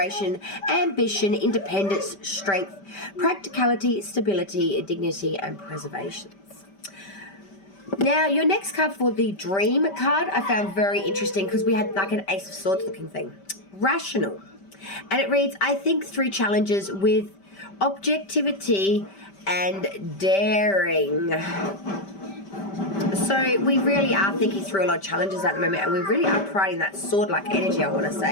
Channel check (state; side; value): late; right; 5.1 ms